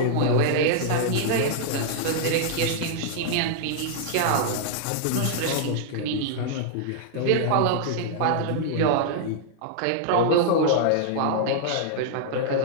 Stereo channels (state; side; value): different; both; correlation -0.01